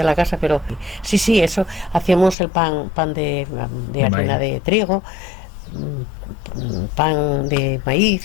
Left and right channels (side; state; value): right; drops out; at 2.4 s